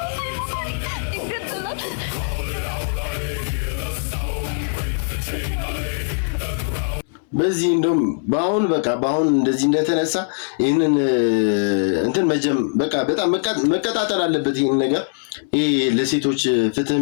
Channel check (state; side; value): silent; right; digital silence